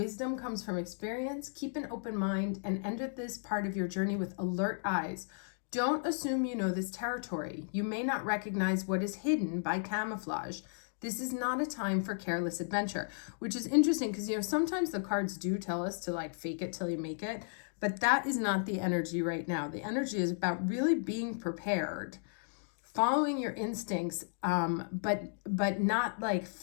comes from experience. Keep an open mind and enter this part of your journey with alert eyes. Don't assume you know this territory. You may not recognize what is hidden by camouflage. This is not a time for careless adventure, which is interesting because, sometimes the cards do tell us to like fake it till you make it, but that is not the energy right now. The energy is about really being prepared, following your instincts, but not like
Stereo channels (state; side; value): silent; right; digital silence